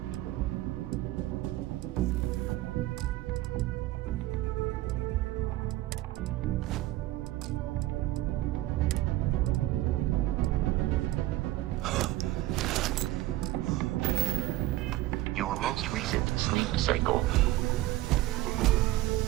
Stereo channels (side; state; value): left; quieter; 16.4 dB